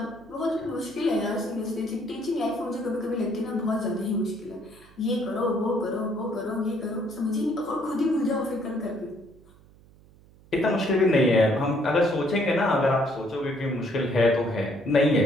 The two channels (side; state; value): right; noise; hum, 26 dB below the sound